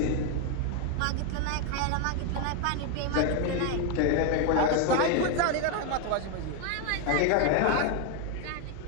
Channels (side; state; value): both; different; correlation 0.01